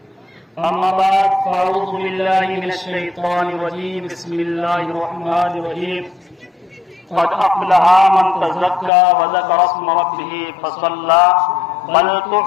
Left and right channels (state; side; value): drops out; right; at 8.9 s